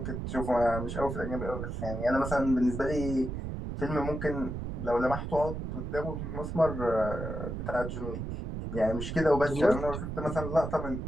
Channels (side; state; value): right; noise; rumble, 5 dB below the sound